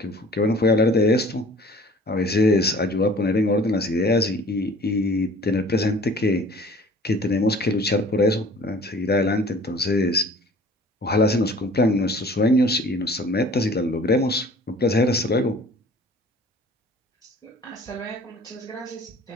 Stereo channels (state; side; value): normal; both; correlation 0.49